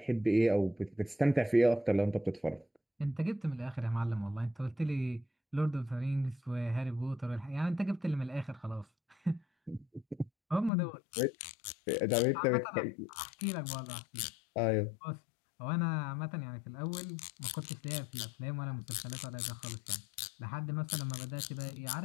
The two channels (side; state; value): right; drops out; at 10.7 s